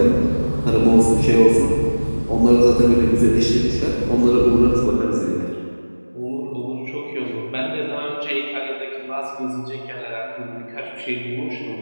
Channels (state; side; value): inverted; both; correlation -1.00